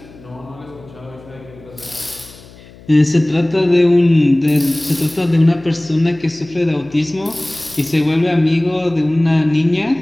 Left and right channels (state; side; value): noise; left; hum, 22 dB below the sound